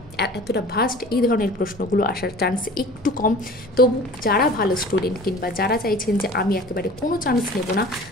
এতটা ভাস্ট এই ধরনের প্রশ্নগুলো আসার চান্স একটু কম। তবু যারা ভালো স্টুডেন্ট কিংবা যারা চাইছেন যে আমি একেবারে কোনো চান্স নেব না,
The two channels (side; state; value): left; noise; hum, 24 dB below the sound